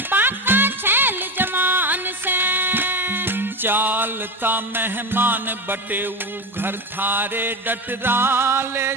बाका छैल जवान से। चालता मेहमान बटेऊ घर थारे डटरा, ले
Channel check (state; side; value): normal; both; correlation 0.20